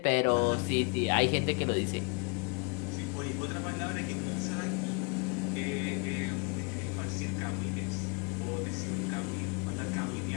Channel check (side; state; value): right; quieter; 33.3 dB